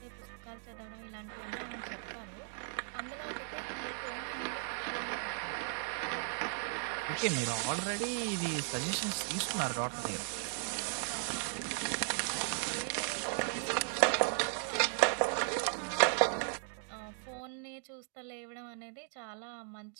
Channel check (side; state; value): left; silent; 53 dB below the other